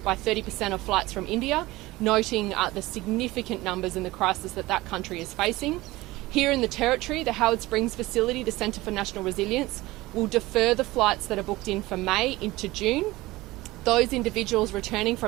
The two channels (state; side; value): quieter; left; 19.3 dB